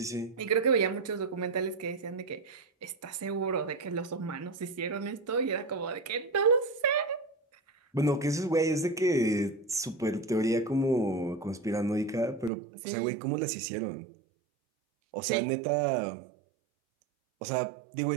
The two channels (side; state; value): left; drops out; at 12.5 s